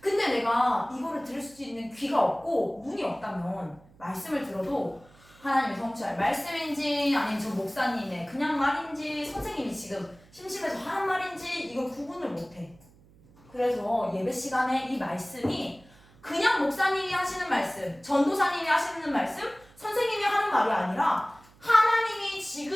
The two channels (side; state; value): right; noise; hum, 27 dB below the sound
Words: 내가 이거를 들을 수 있는 귀가 없고 눈이 없다면 말씀을 들어도 하나님이 성취할 말씀인지 아니면 저 목사님의 그냥 말인지 선생님이 지금 심심해서 하는 말인지 이걸 구분을 못해. 그래서 예배 시간에 이 말씀이 그냥 목사님이 하시는 말씀, 전도사님이 하시는 말씀, 선생님이 하는 말이 아니라 하나님이